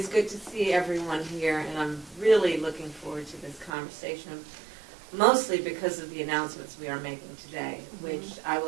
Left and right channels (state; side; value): drops out; left; at 3.7 s